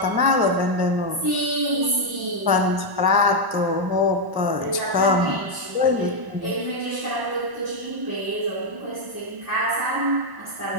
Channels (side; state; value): left; late; 1.1 ms